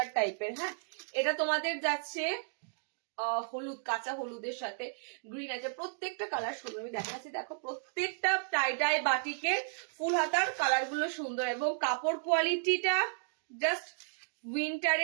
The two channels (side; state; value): left; silent; digital silence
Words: টাইপের। হ্যাঁ, এটা তোমাদের যাচ্ছে হলুদ, কাঁচা হলুদের সাথে গ্রিন আছে। প্রত্যেকটা কালার সুন্দর, আমি দেখাচ্ছি, দেখো প্রত্যেকটা টাই বাটিকের ফুল হাতার কালার গুলো সুন্দর, এবং কাপড় কোয়ালিটিটা জাস্ট